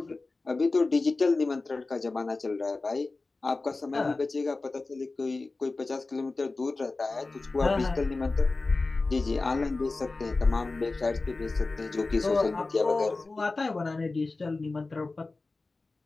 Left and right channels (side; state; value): right; quieter; 3.5 dB